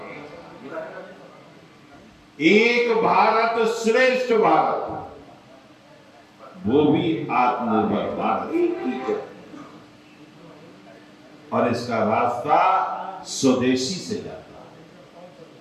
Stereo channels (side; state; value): both; identical; correlation 1.00